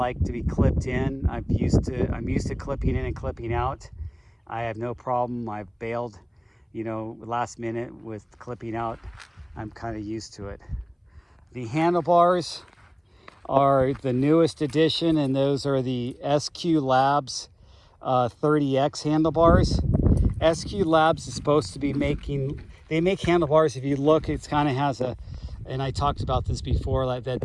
to be clipped in. I'm used to clipping in and clipping out. I have no problem. I've bailed, last minute with clipping out. I'm kind of used to it. The handlebars are the newest edition, and those are the SQ Labs 30X handlebars. SQ Labs is supposed to be they make handlebars. If you look, it's kind of has and I talked about this before, like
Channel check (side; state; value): both; identical; correlation 1.00